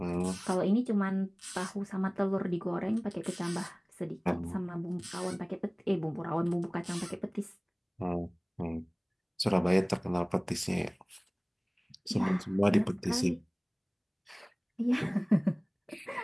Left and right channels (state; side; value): identical; both; correlation 1.00